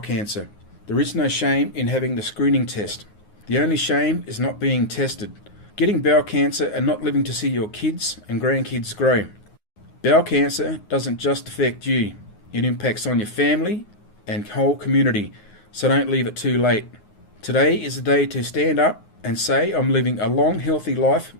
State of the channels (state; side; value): late; right; 9.6 ms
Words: There is no shame in having the screening test. The only shame is not being tested, getting bowel cancer and not living to see your kids and grandkids grow. Bowel cancer doesn't just affect you. It impacts on your family and whole community, so don't leave it too late. Today is the day to stand up and say, I'm living a long, healthy life